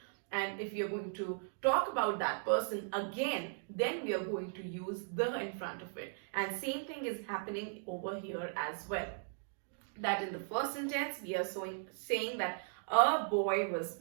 And if you're going to talk about that person again, then we are going to use the in front of it. And same thing is happening over here as well. That in the first sentence, we are saying that a boy was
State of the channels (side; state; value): left; silent; digital silence